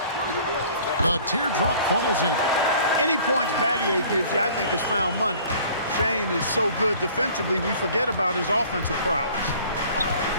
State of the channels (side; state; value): both; inverted; correlation -0.50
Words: The teardrop falls in. Any points Battier gives you, I think, is found money. Shane is so good defensively, we forget about his offensive prowess.